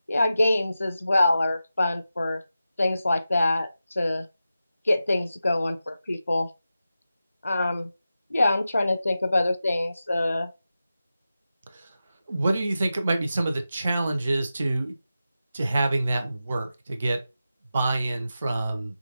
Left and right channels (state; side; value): inverted; both; correlation -0.92